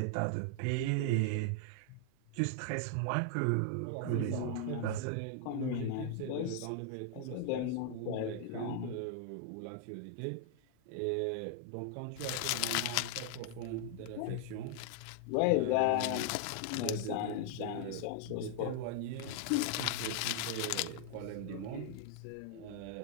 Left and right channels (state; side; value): different; both; correlation 0.00